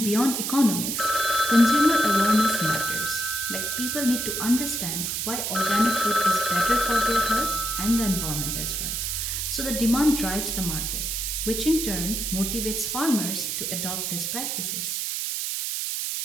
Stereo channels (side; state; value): right; noise; hiss, 2 dB below the sound